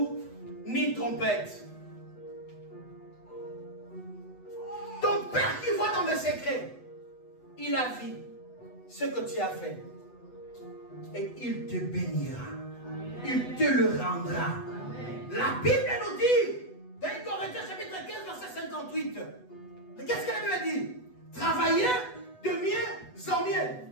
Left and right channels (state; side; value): late; right; 8.1 ms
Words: ni trompette. Ton Père qui voit dans les secrets, il a vu ce que tu as fait. Et il te bénira. Il te le rendra. La Bible nous dit, dans Corinthiens chapitre 15, verset 58, qu'est-ce que la Bible dit? Travaillez de mieux en mieux,